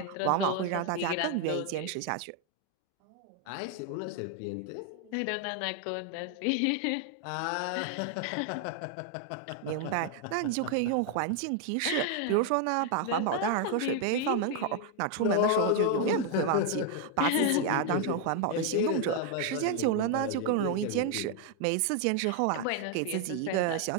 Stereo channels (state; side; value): different; both; correlation 0.00